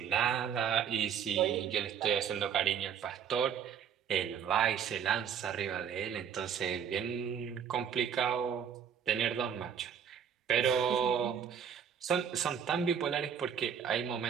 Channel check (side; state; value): left; quieter; 8.0 dB